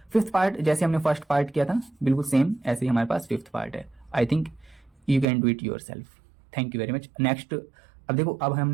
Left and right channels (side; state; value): left; drops out; at 5.2 s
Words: फिफ्थ पार्ट जैसे हमने फर्स्ट पार्ट किया था बिल्कुल सेम ऐसे ही हमारे पास फिफ्थ पार्ट है। I think you can do it your self. Thank you very much. Next अब देखो, अब